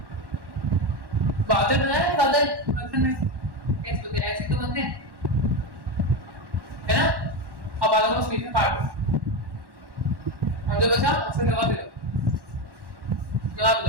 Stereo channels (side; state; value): left; late; 1.1 ms